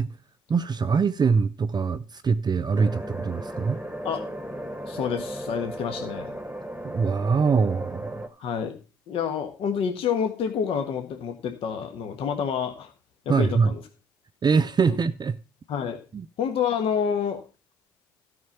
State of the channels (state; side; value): normal; both; correlation 0.67